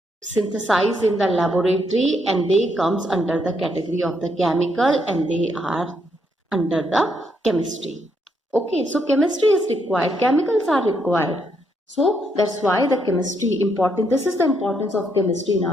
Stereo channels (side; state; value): both; normal; correlation 0.75